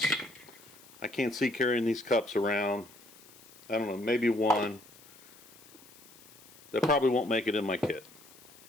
I can't see carrying these cups around. I don't know, maybe one. That probably won't make it in my kit.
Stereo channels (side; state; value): left; noise; hiss, 22 dB below the sound